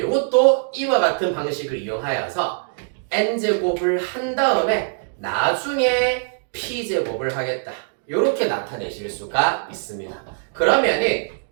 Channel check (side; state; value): left; silent; digital silence